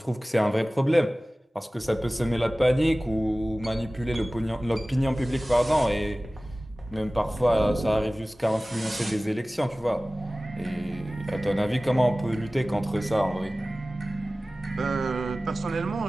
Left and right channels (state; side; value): normal; both; correlation 0.97